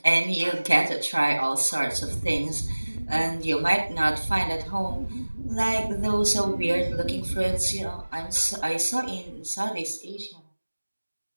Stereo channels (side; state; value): both; inverted; correlation -1.00